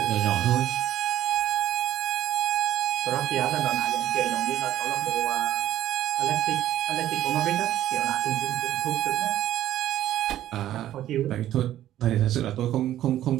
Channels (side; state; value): left; quieter; 12.7 dB